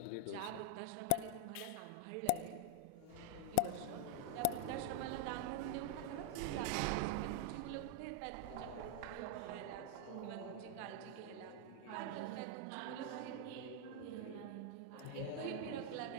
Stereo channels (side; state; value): both; different; correlation 0.00